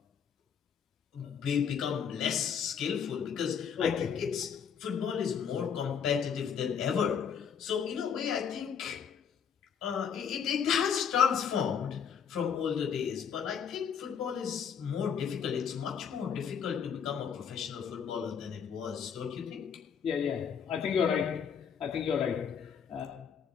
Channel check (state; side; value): quieter; right; 7.3 dB